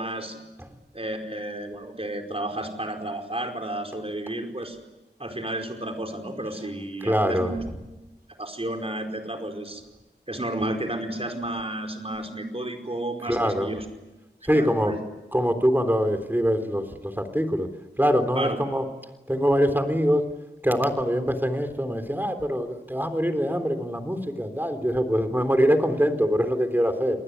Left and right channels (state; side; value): normal; both; correlation 0.85